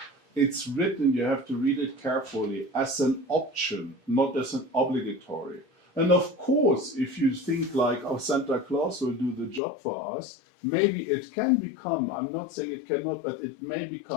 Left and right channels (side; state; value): right; drops out; at 9.6 s